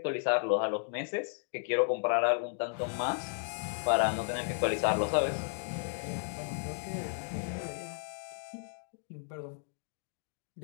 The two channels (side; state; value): right; silent; digital silence